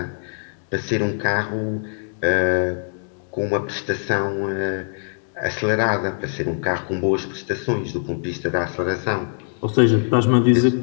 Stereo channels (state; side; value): silent; right; digital silence